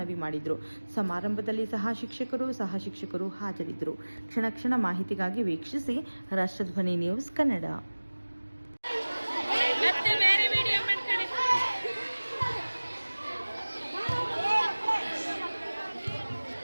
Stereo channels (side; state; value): both; inverted; correlation -1.00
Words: ಮಾಡಿದರು. ಸಮಾರಂಭದಲ್ಲಿ ಸಹ ಶಿಕ್ಷಕರು ಹಾಜರಿದ್ದರು. ಕ್ಷಣ ಮಾಹಿತಿಗಾಗಿ ವೀಕ್ಷಿಸಿ ರಾಷ್ಟ್ರಧ್ವನಿ ನ್ಯೂಸ್ ಕನ್ನಡ.